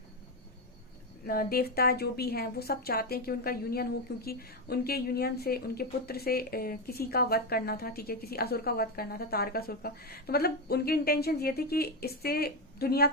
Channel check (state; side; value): normal; both; correlation 0.10